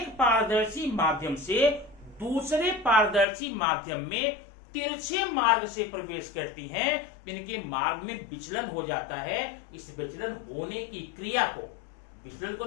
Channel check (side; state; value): right; drops out; at 3.2 s